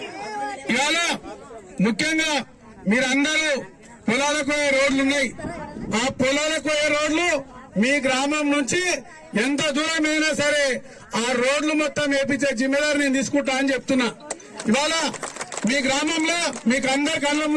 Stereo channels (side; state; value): both; identical; correlation 1.00